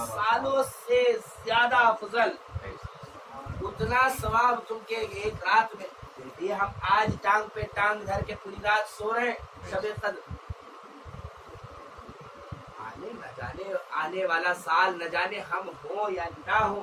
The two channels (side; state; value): both; identical; correlation 1.00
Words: سالوں سے زیادہ افضل، اتنا ثواب تم کے ایک رات میں۔ یہ ہم آج ٹانگ پہ ٹانگ دھر کے پوری رات سو رہے ہیں شب قدر، آنے والا سال نہ جانے ہم ہوں یا نہ ہوں۔